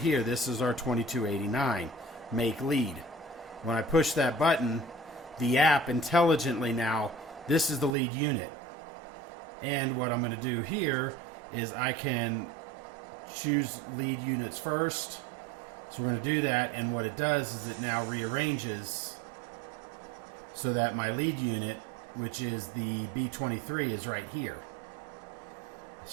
This is our 2289, make lead. When I push that button, the app intelligently now, this is the lead unit. And what I'm going to do here is I can choose lead units first, So we're going to do that, and what it does is it now rearranges so that my lead unit, which is the B23, is right here.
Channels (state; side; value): drops out; left; at 7.9 s